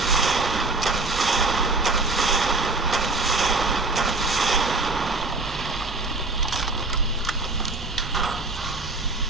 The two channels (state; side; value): quieter; left; 3.3 dB